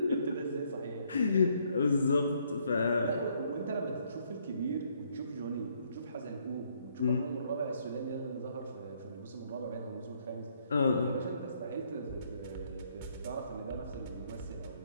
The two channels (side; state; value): both; inverted; correlation -0.69